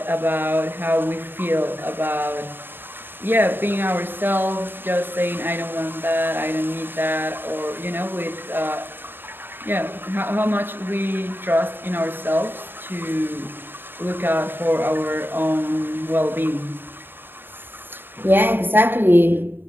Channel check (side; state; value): left; late; 0.097 ms